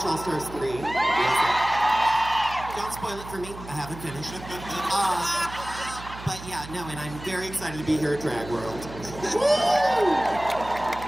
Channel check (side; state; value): right; noise; hum, 14 dB below the sound